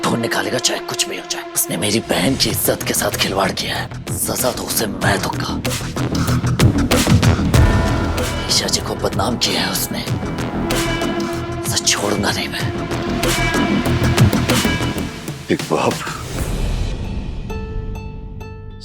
ढूंढ निकालेगा, चाहे कुछ भी हो जाए। उसने मेरी बहन की इज्जत के साथ खिलवाड़ किया है, सजा तो उसे मैं दूंगा। ईशा जी को बदनाम किया है उसने, उसे छोड़ूंगा नहीं मैं। एक बाप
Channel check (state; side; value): identical; both; correlation 1.00